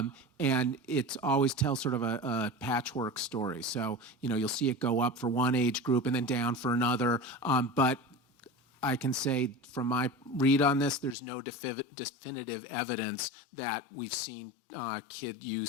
it always tells sort of a patchwork story. So, you'll see it go up for one age group and then down for another. But I can say from my read on this, there's no definitive evidence that we've seen kid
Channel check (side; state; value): right; drops out; at 11.2 s